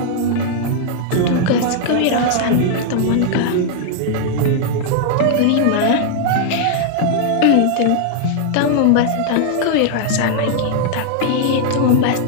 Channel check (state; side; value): different; both; correlation -0.01